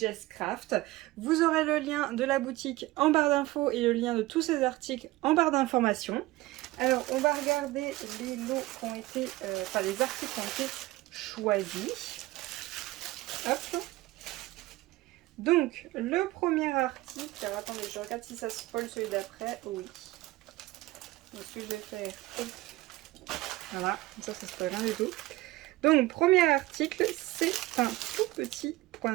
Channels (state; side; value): quieter; left; 18.8 dB